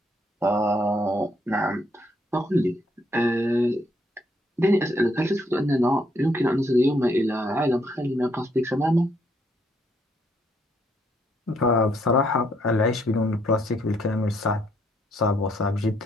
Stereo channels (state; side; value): normal; both; correlation 0.71